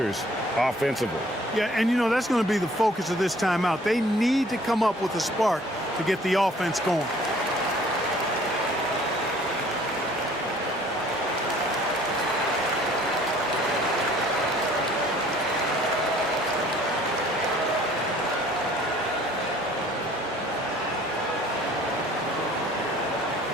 offensively. Yeah, and you know, that's going to be the focus of this timeout. They need to come up with a spark to get the offense going.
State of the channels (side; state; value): both; normal; correlation 0.55